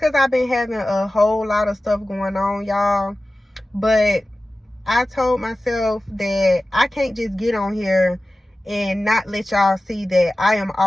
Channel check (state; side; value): normal; both; correlation 0.96